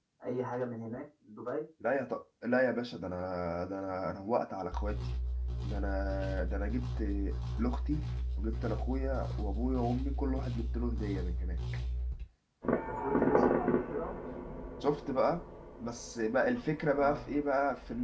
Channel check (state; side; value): identical; both; correlation 1.00